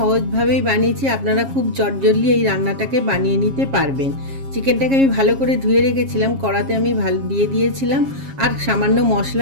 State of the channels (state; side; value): late; left; 7.4 ms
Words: বানিয়েছি, আপনারা খুব চটজলদি এই রান্নাটাকে বানিয়ে নিতে পারবেন। চিকেনটাকে আমি ভালো করে ধুয়ে রেখেছিলাম, কড়াতে আমি দিয়ে দিয়েছিলাম আর সামান্য